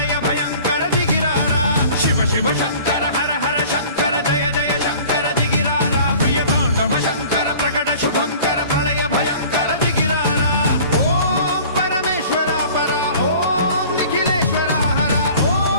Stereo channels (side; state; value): both; inverted; correlation -0.46